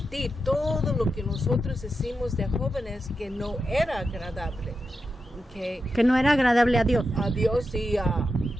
todo lo que nosotros hicimos de jóvenes que no era agradable, Que no era agradable a Dios. a Dios y a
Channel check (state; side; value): normal; both; correlation 0.88